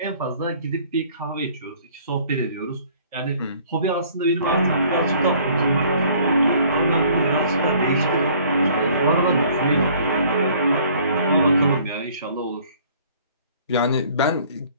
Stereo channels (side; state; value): both; inverted; correlation -0.56